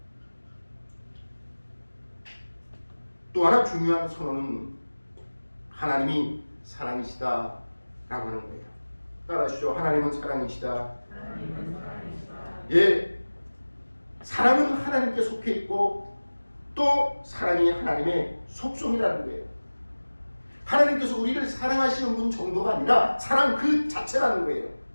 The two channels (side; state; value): both; inverted; correlation -1.00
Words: 또 하나 중요한 선언은 하나님이 사랑이시다 라고 하는 거예요. 따라하시죠. 하나님은 사랑이시다. 예, 사랑은 하나님께 속해 있고 또 사랑이 하나님의 속성이라는 거예요. 하나님께서 우리를 사랑하시는 분 정도가 아니라 사랑 그 자체라는 거예요.